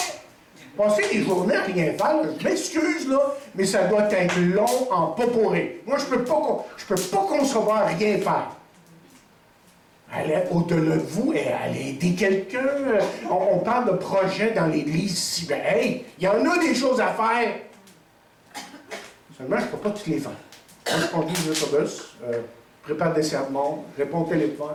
Passez des journées à rien faire, là, je m'excuse, là, mais ça doit être long en poporé. Moi, je peux pas concevoir rien faire. Allez au-delà de vous et allez aider quelqu'un. On parle de projets dans l'Église ici. Ben, hey, il y en a des choses à faire. Seulement, je ne peux pas toutes les faire. Moi, je conduis l'autobus, prépare des sermons, réponds au téléphone,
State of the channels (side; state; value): both; identical; correlation 1.00